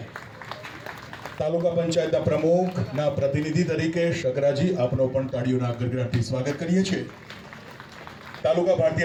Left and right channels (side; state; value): both; identical; correlation 1.00